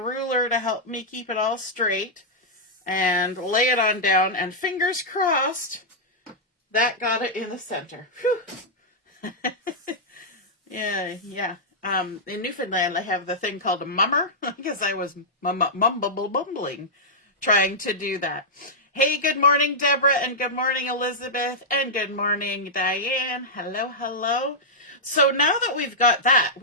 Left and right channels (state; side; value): normal; both; correlation -0.09